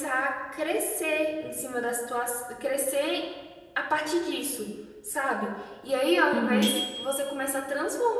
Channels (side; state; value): both; identical; correlation 1.00